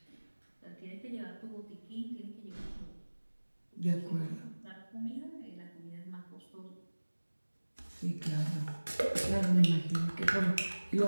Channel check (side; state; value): both; inverted; correlation -1.00